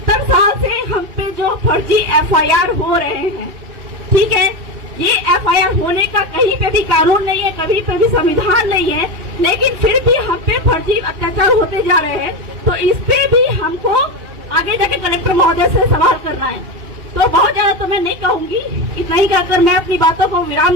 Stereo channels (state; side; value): late; left; 2.6 ms